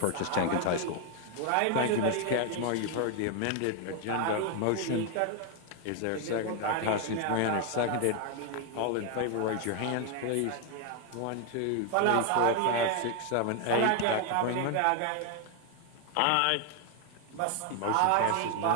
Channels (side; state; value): both; different; correlation 0.01